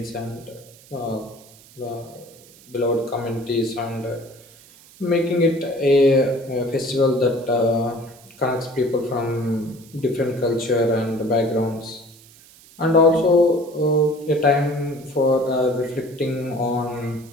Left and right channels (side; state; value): right; noise; hiss, 24 dB below the sound